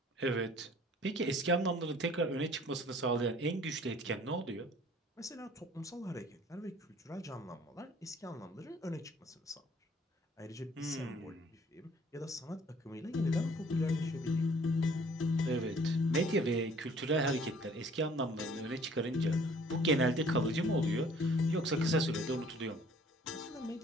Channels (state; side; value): normal; both; correlation 0.55